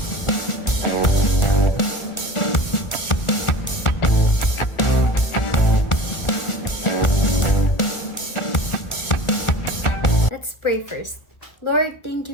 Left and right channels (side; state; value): right; late; 1.4 ms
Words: Let's pray first. Lord, thank